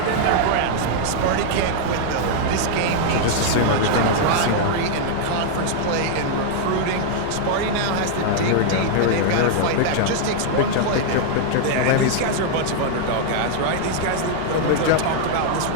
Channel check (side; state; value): both; different; correlation 0.00